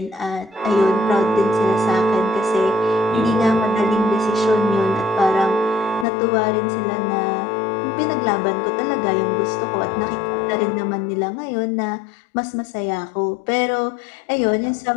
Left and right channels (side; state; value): right; drops out; at 6.1 s